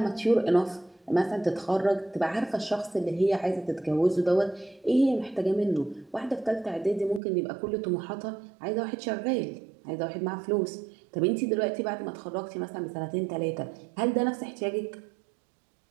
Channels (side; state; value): left; drops out; at 7.2 s